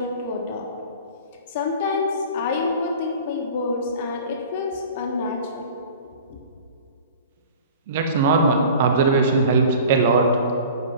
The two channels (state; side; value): inverted; both; correlation -0.42